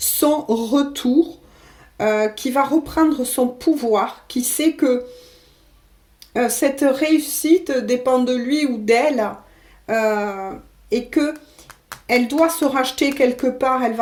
retour, qui va reprendre son pouvoir, qui sait que cette réussite dépend de lui ou d'elle euh, et que elle doit se racheter quelque part, elle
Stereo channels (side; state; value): both; identical; correlation 1.00